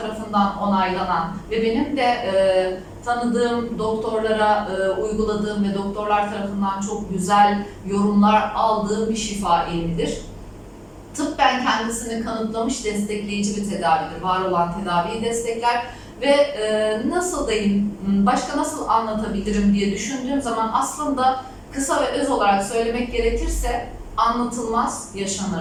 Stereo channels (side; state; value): both; identical; correlation 1.00